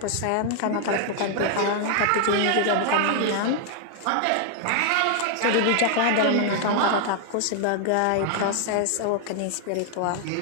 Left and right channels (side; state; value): both; different; correlation 0.00